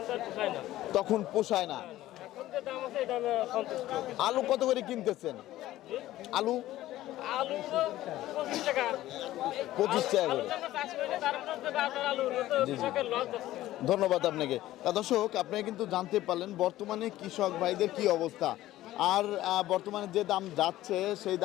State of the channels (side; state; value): right; quieter; 15.1 dB